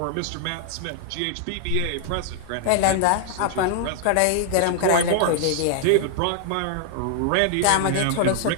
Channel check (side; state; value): both; different; correlation 0.00